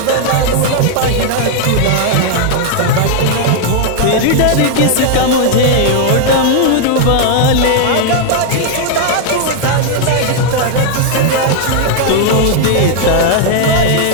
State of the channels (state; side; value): different; both; correlation 0.00